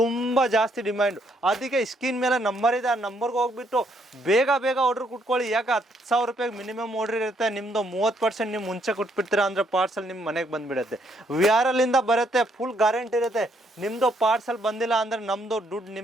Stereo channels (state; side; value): normal; both; correlation 0.71